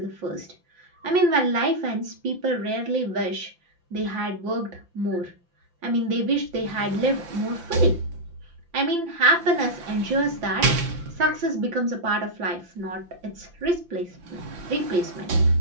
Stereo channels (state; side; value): late; left; 5.8 ms